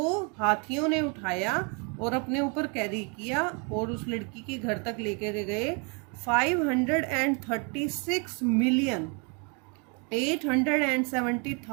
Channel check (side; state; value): left; quieter; 34.7 dB